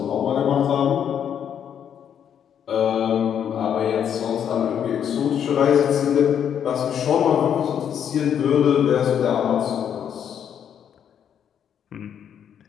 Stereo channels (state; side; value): quieter; right; 8.7 dB